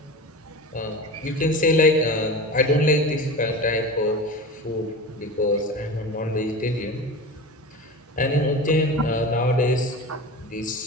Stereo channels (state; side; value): normal; both; correlation 0.30